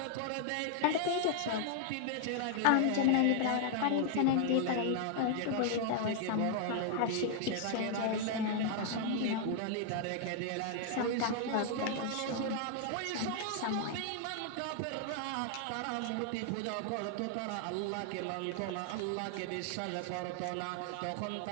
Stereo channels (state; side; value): different; both; correlation 0.00